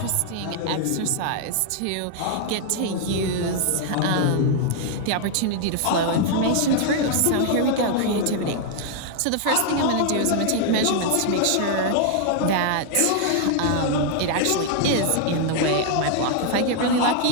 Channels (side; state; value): both; different; correlation 0.00